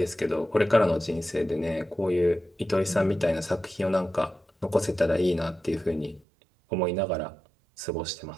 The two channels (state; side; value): drops out; left; at 6.2 s